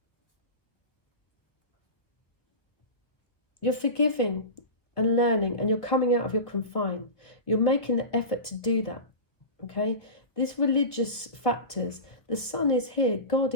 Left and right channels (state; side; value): late; right; 1.0 ms